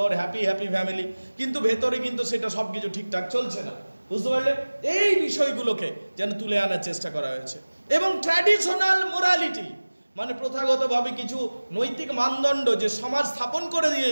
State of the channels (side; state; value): both; inverted; correlation -1.00